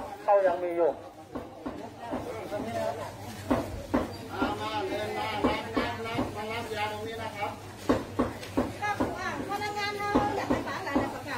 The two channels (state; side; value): identical; both; correlation 1.00